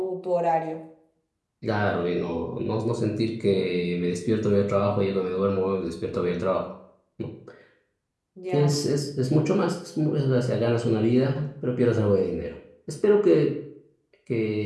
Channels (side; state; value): both; identical; correlation 1.00